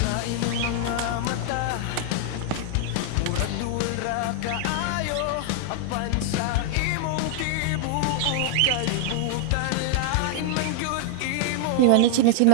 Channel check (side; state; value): both; different; correlation 0.00